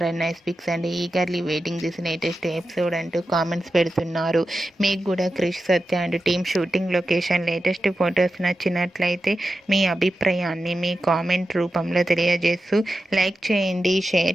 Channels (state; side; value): normal; both; correlation 0.91